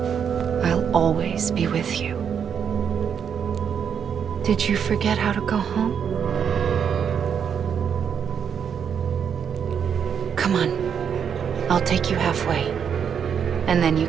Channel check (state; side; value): quieter; left; 7.6 dB